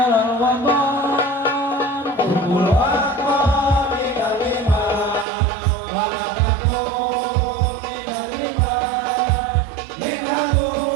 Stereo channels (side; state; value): left; drops out; at 5.2 s